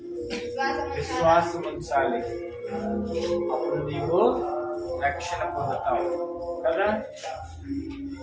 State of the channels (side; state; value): both; identical; correlation 1.00